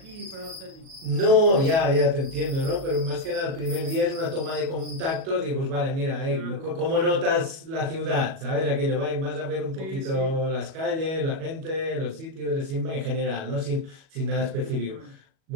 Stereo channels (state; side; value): late; left; 37 ms